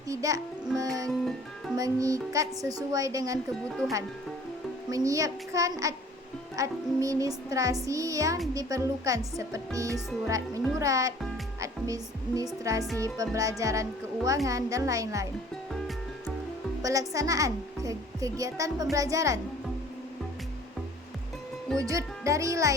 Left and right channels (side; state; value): both; normal; correlation 0.52